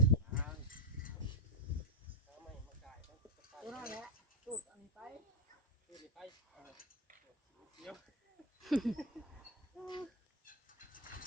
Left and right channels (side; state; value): both; normal; correlation 0.03